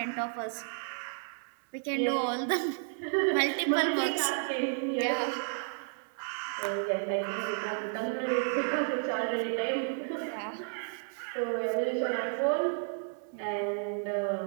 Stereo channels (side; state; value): left; silent; 56 dB below the other